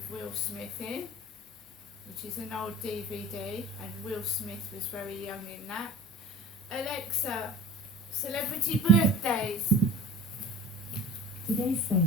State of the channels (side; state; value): both; normal; correlation 0.40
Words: Will Smith in, which is an old DVD, and Will Smith was very young in that. Alexa, celebrity birthdays. Today's